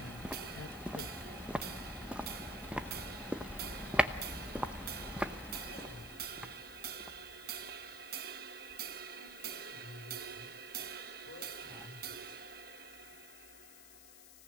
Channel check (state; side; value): noise; left; hiss, 15 dB below the sound